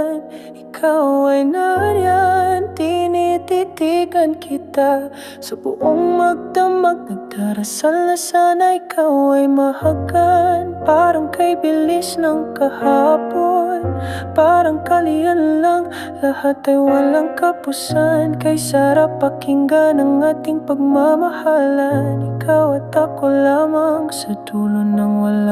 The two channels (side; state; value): both; identical; correlation 1.00